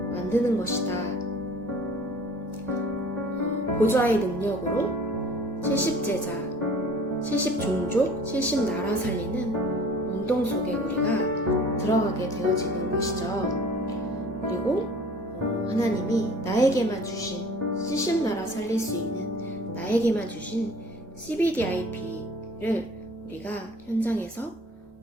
만드는 것이다. 보좌의 능력으로 70제자, 70종족, 70나라 살리는 운동 속에 우리가 들어가게 되어지는 것이죠. 그리고 하나님이 나에게만 주신 70나라 살릴 수 있는 나에게만 주신 CBDIP를 우리가 현장에서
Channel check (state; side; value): normal; both; correlation 0.48